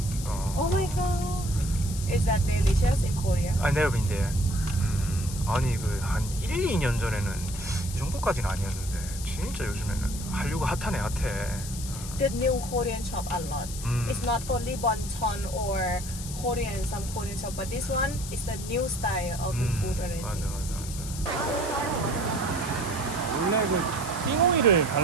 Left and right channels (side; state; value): left; noise; hiss, 10 dB below the sound